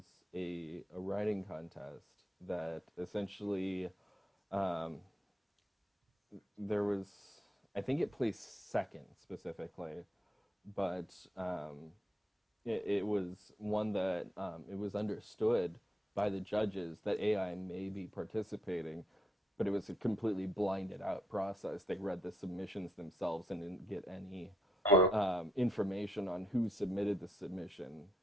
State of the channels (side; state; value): both; normal; correlation 0.76